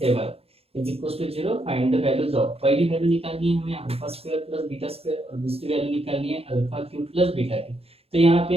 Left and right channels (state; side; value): late; left; 0.29 ms